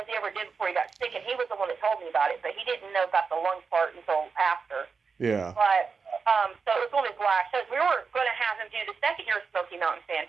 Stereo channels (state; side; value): quieter; left; 5.2 dB